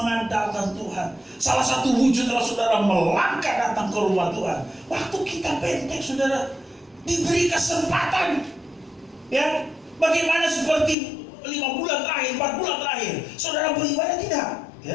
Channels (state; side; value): drops out; right; at 11.0 s